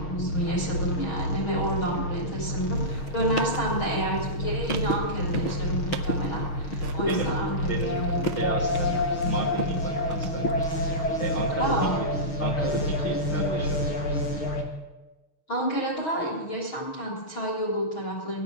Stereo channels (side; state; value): right; late; 6.4 ms